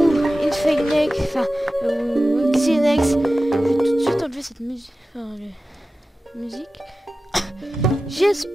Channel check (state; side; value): normal; both; correlation 0.94